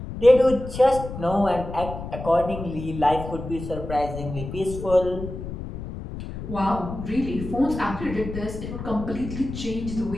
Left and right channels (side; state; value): left; noise; rumble, 9 dB below the sound